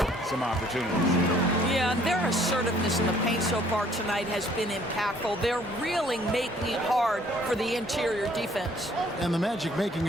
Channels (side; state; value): both; normal; correlation 0.60